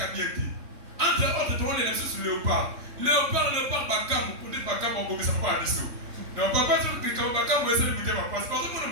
à bien te. Entre autres, tu vois les nations sur Léopard. Léopard, Bakam, pour dire Bakam, on ne peut pas aller sur. Mais on ne peut pas dire que Bakam va essayer de lutter parce que tout le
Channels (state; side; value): late; left; 3.6 ms